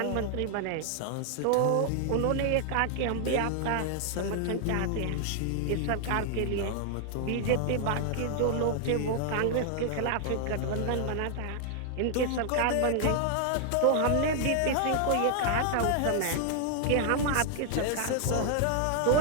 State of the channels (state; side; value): different; both; correlation 0.00